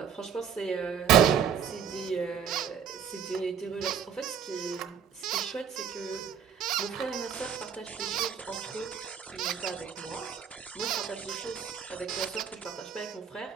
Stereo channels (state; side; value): quieter; left; 7.8 dB